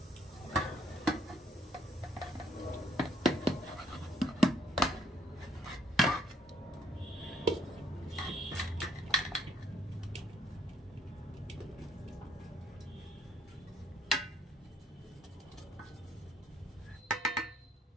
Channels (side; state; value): both; normal; correlation 0.68